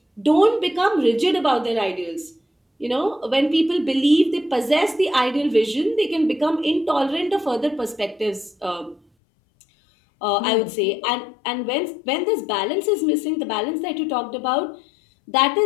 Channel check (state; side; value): drops out; right; at 9.0 s